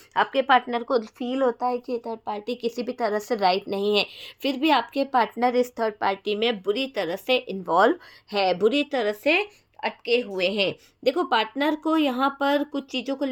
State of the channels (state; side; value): identical; both; correlation 1.00